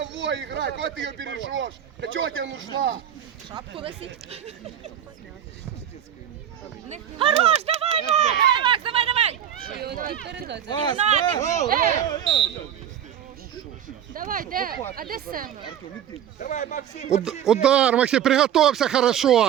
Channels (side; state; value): left; quieter; 9.8 dB